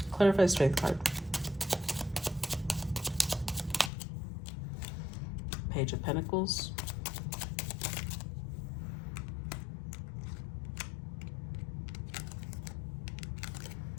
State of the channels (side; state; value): right; drops out; at 3.9 s